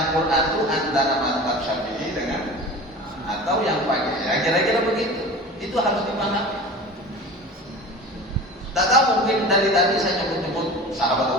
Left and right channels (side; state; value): both; normal; correlation 0.36